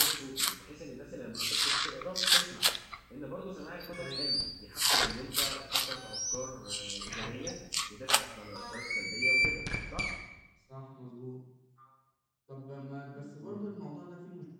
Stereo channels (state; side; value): identical; both; correlation 1.00